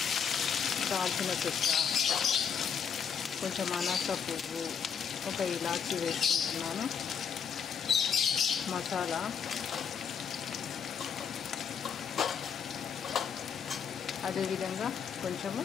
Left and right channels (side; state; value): right; quieter; 7.1 dB